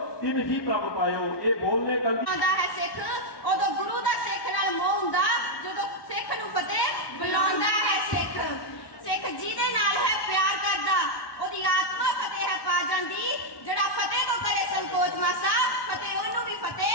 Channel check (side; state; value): right; late; 1.1 ms